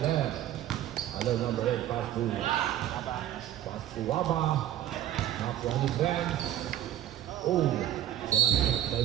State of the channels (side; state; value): left; quieter; 12.2 dB